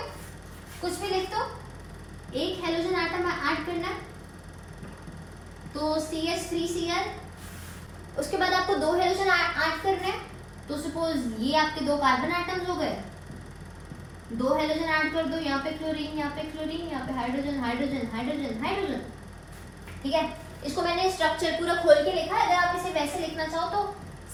कुछ भी लिख दो। एक हेलोजन एटम ऐड करना है तो CH3Cl, उसके बाद आपको 2 हेलोजन ऐड करने हैं तो सपोज ये आपके 2 कार्बन एटम्स हो गए, 2 हेलोजन ऐड कर दो, यहाँ पे क्लोरीन, यहाँ पे क्लोरीन, यहाँ पे हाइड्रोजन हाइड्रोजन हाइड्रोजन हाइड्रोजन। ठीक है, इसको मैंने स्ट्रक्चर पूरा खोल के लिखा है, अगर आप इसे वैसे लिखना चाहो तो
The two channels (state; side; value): identical; both; correlation 1.00